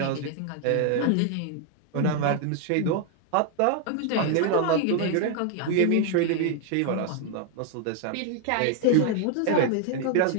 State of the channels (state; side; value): different; both; correlation 0.00